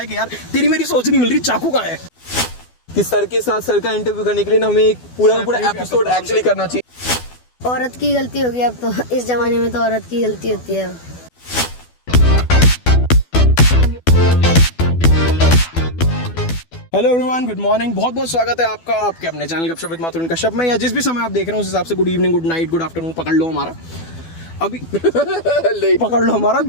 कि यार तेरी मेरी सोच नहीं मिल रही, चाकू कहाँ है। कि सर के साथ सर का इंटरव्यू करने के लिए ना हमें एक पूरा एपिसोड एक्चुअली करना चाहिए। औरत की गलती होगी अब तो, इस जमाने में तो औरत की गलती होती है। हेलो एवरीवन, गुड मॉर्निंग, बहुत बहुत स्वागत है आपका आपके अपने चैनल गपशप विद माथुर कश्यप में, या जिस भी समय आप देख रहे हो उस हिसाब से good evening, good night, good afternoon पकड़ लो हमारा अभी पकड़ लो हमारा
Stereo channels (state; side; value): late; right; 12 ms